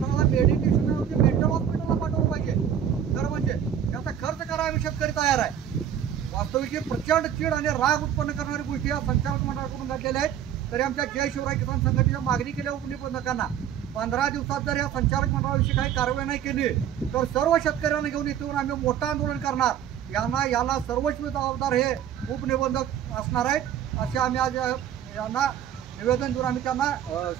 मेडिटेशनवरती मेंटल हॉस्पिटलला पाठवलं पाहिजे. तर म्हणजे त्याचा खर्च करायला आम्ही शेतकरी तयार आहे. वास्तविक प्रचंड चीड आणि राग उत्पन्न करणारी गोष्टी या संचालक मंडळाकडून घडलेल्या आहेत. तरी आमच्या जय शिवराय किसान संघटनेच्या मागणी केल्या उपनिबंधकांना 15 दिवसात जर या संचालक मंडळाविषयी काही कारवाई नाही केली तर सर्व शेतकऱ्यांना घेऊन इथून आम्ही मोठं आंदोलन करणार. याला सर्वस्वी जबाबदार हे उपनिबंधक असणार आहेत असे आम्ही आज यांना निवेदन देऊन आम्ही त्यांना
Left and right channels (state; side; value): quieter; left; 9.5 dB